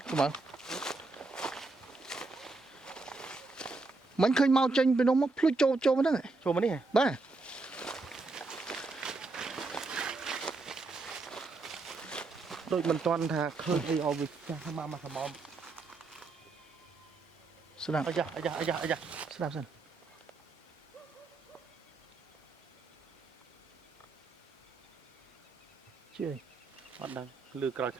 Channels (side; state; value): left; quieter; 3.6 dB